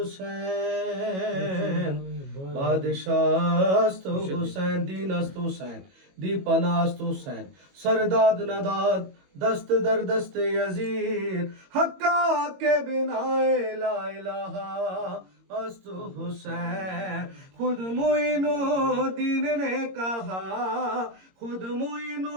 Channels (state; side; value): late; left; 22 ms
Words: बादशास्तु हुसैन दीनस्तु हुसैन दीपनास्तु हुसैन सरदाद नदाद दस्त दर दस्त यजीद हक्का के बिना ला इलाहा अस्तु हुसैन खुद मुइनो दीन ने कहा खुद